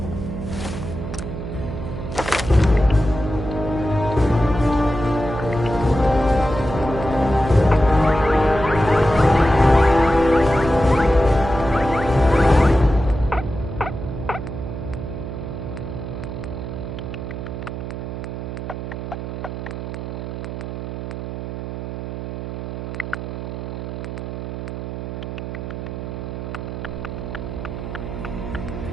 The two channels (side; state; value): right; noise; hum, 6 dB below the sound